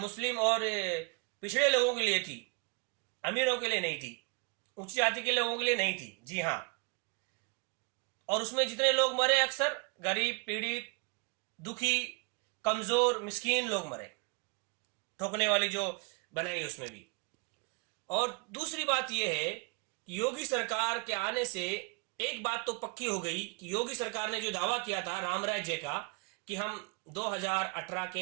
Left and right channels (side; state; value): left; quieter; 33.6 dB